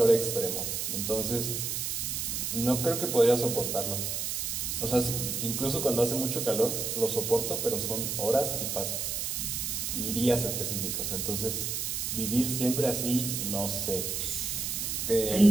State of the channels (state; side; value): noise; right; hiss, 2 dB below the sound